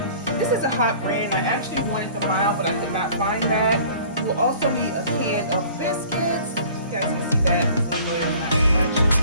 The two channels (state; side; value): inverted; both; correlation -0.49